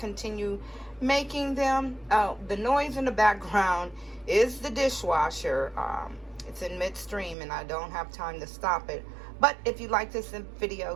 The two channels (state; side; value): drops out; left; at 7.4 s